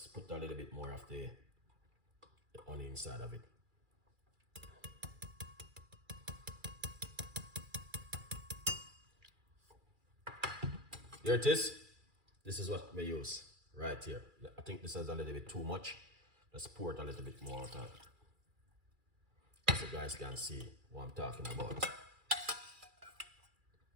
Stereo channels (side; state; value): left; late; 2.4 ms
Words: put a little bit more of the honey inside of it. Here it is. This is what we use right here. I think this is a little bit too much. Let's pour it a little bit more out of it, so you guys can see what I'm talking about.